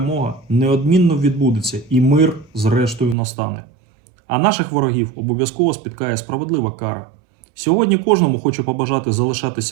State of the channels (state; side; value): drops out; left; at 3.2 s